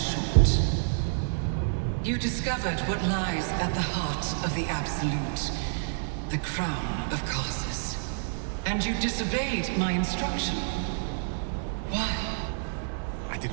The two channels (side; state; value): left; silent; digital silence